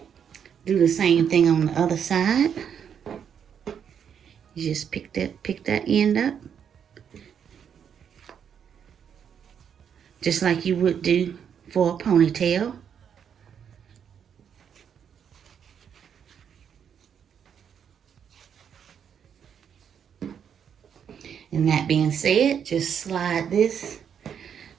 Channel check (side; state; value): left; quieter; 8.0 dB